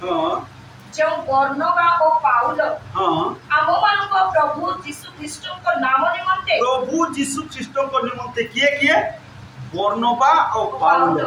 जो बर्नबा ओ पाउल आम्भमानक प्रभु यीशु ख्रीष्टक नाम निमंते किए बर्नबा और पाउल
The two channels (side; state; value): both; identical; correlation 1.00